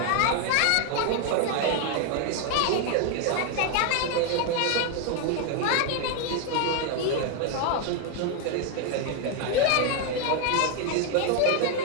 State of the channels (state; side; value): different; both; correlation 0.01